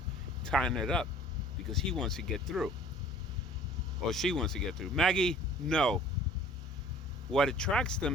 tying it up, because he wants to get through. Or she wants to get through. Maggie, no. What attracts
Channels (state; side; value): normal; both; correlation 0.50